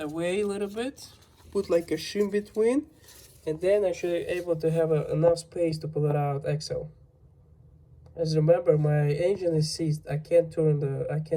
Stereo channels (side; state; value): both; identical; correlation 1.00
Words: a little bit, put like a shim between, and then I should be able to have enough space to pull it out axle. As remember, my engine is seized. I can't spin